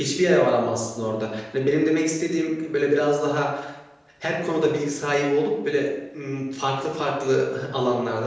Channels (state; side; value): identical; both; correlation 1.00